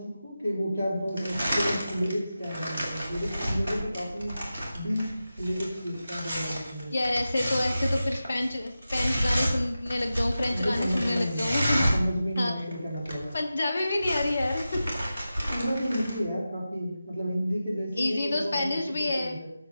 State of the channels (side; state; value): both; inverted; correlation -0.93